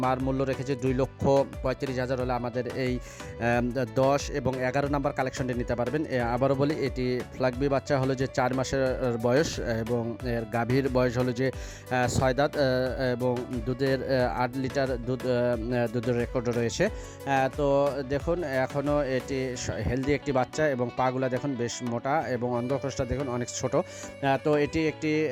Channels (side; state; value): both; identical; correlation 1.00